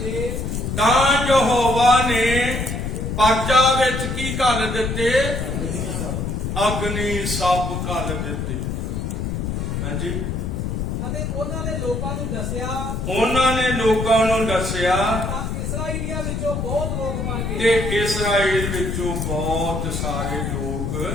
ਤਾਂ ਯਹੋਵਾ ਦਿੱਤੇ? ਅਗਨੀ ਸੱਪ ਘਲ ਦਿੱਤੇ। ਹਾਂਜੀ, ਅਤੇ ਉਹਨਾਂ ਨੇ ਲੋਕਾਂ ਨੂੰ ਦੱਸਿਆ ਉਹਨਾਂ ਨੇ ਲੋਕਾਂ ਨੂੰ ਦੱਸਿਆ ਤਾਂ ਇਸਰਾਈਲੀਆਂ ਵਿੱਚੋਂ ਬਹੁਤ ਲੋਕ ਮਰ ਤੇ ਗਏ। ਇਸਰਾਏਲ ਵਿੱਚੋਂ ਬਹੁਤ ਸਾਰੇ ਲੋਕ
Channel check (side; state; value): left; noise; rumble, 3 dB below the sound